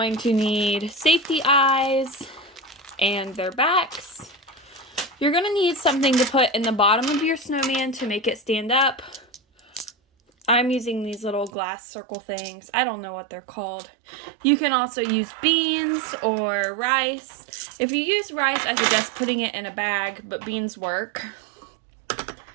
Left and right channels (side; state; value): left; drops out; at 11.5 s